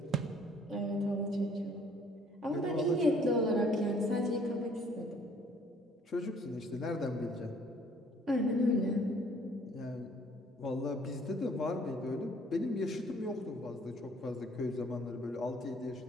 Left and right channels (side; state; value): both; normal; correlation 0.59